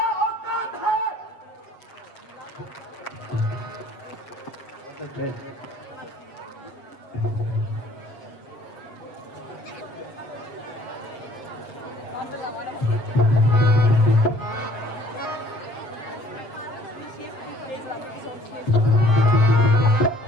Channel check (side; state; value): right; late; 7.6 ms